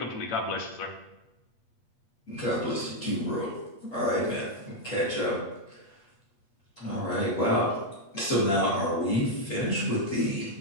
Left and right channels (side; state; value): right; late; 8.4 ms